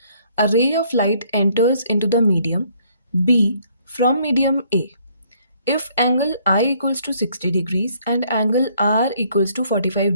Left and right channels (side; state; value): both; inverted; correlation -0.65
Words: a ray of light enters into the medium B from medium A if angle I equals to 60 degrees and angle R equals to 45